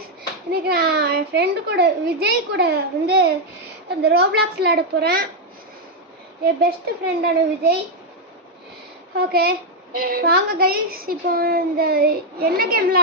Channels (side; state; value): both; normal; correlation 0.01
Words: இன்னைக்கு நான் என் friend கூட விஜய் கூட வந்து அந்த ரோப்ளாக்ஸ் விளையாட போகிறேன். என் பெஸ்ட் ஃப்ரெண்டான விஜய். ஓகே வாங்க கைஸ், இப்போ இந்த என்ன கேம்